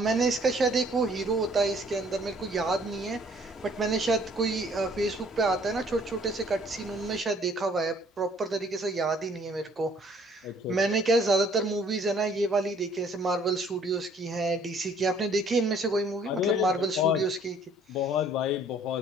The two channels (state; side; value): normal; both; correlation 0.59